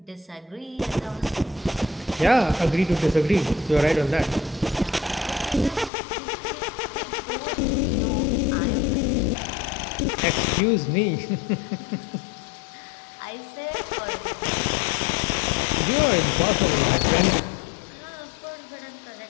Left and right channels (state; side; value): drops out; right; at 5.9 s